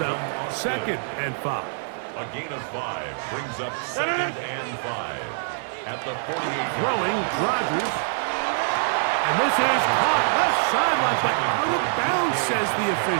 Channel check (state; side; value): silent; left; digital silence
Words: up 2nd and 5. A gain of 5 brings up 2nd and 5. At the 48. Throwing, Rodgers. And this is caught left sideline, but out of bounds, says the